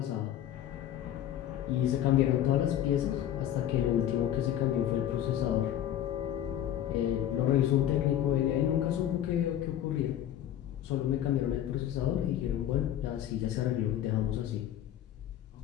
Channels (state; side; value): quieter; right; 11.4 dB